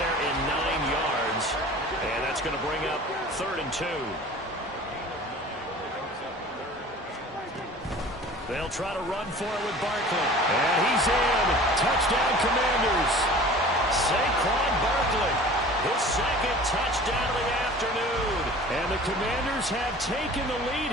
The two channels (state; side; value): normal; both; correlation 0.43